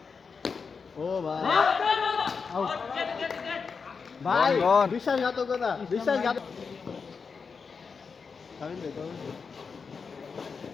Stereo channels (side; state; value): right; quieter; 5.4 dB